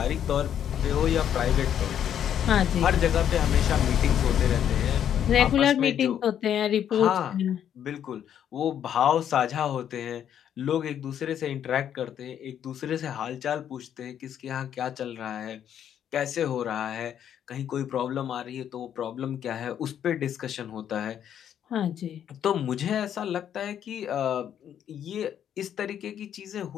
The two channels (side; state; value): right; quieter; 9.6 dB